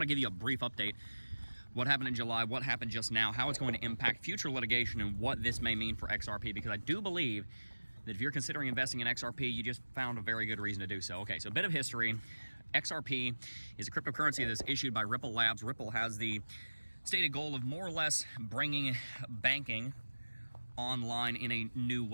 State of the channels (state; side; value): inverted; both; correlation -1.00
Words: to give you a brief update. What happened in July, what happened just now, how it's going to impact future litigation, and what this may mean for XRP, because I do believe that if you're considering investing in XRP, you just found a very good reason to do so. Okay, so a bit of history. XRP is a cryptocurrency that's issued by Ripple Labs. Ripple has the stated goal of more or less bringing banking online in a new